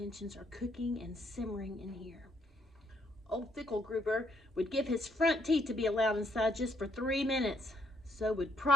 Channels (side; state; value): both; normal; correlation 0.71